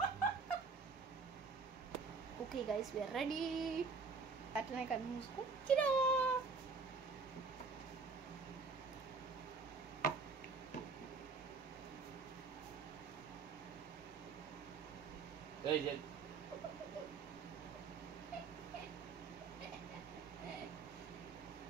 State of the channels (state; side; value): quieter; left; 4.6 dB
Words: Okay guys, we are ready. అట్లనే కళ్ళు మూసుకో.